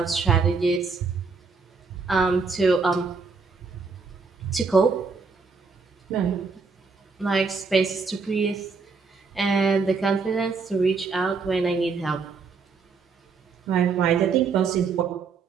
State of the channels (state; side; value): quieter; left; 4.8 dB